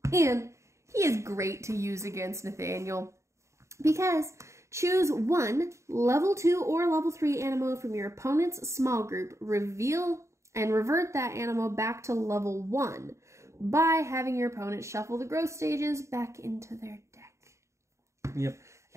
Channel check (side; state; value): left; late; 0.14 ms